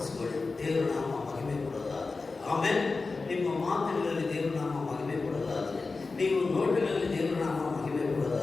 ದೇವರ ನಾಮ ಮಹಿಮೆ ಕೊಡೋದಾದರೆ, ಆಮೇಲೆ ನಿಮ್ಮ ಮಾತುಗಳಲ್ಲಿ ದೇವರ ನಾಮ ಮಹಿಮೆ ಕೊಡೋದಾದರೆ, ನೀವು ನೋಟಗಳಲ್ಲಿ ದೇವರ ನಾಮ ಮಹಿಮೆ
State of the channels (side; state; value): right; quieter; 4.0 dB